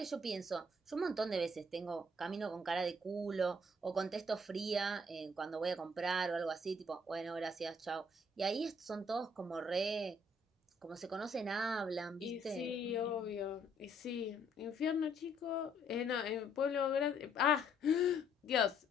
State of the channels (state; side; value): normal; both; correlation 0.66